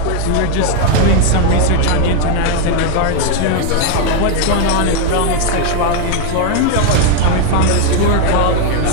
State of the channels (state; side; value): different; both; correlation 0.01